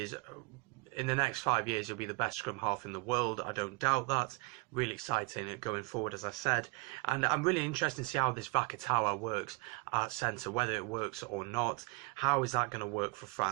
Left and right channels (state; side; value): quieter; left; 28.0 dB